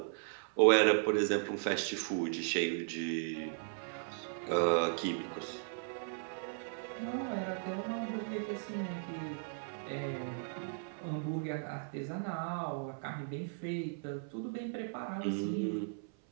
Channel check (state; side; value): silent; left; 53 dB below the other